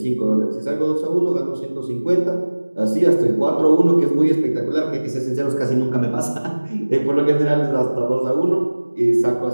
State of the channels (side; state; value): both; inverted; correlation -1.00